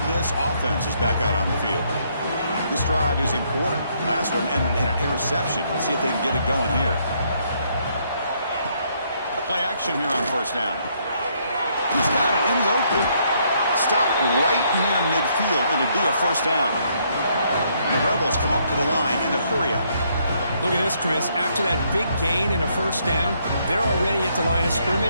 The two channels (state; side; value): inverted; both; correlation -0.71